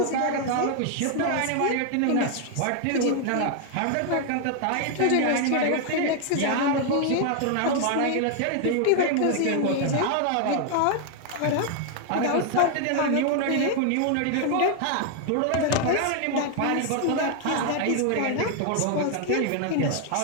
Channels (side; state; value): both; different; correlation 0.00